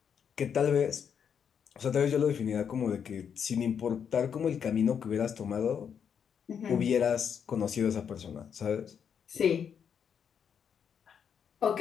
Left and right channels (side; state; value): right; quieter; 7.6 dB